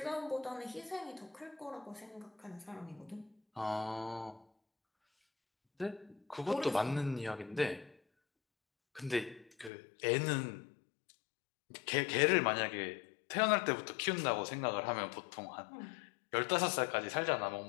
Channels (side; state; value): right; drops out; at 9.7 s